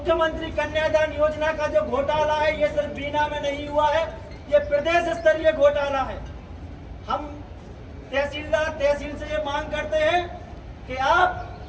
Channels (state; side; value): identical; both; correlation 1.00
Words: कन्यादान योजना का जो घोटाला है ये सिर्फ बीना में नहीं हुआ है, ये प्रदेश स्तरीय घोटाला है। हम तहसील से ये मांग करते हैं कि आप